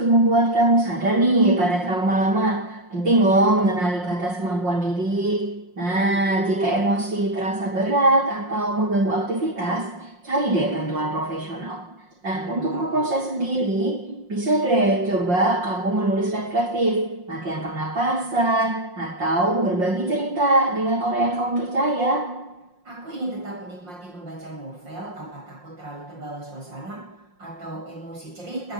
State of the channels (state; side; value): late; left; 5.6 ms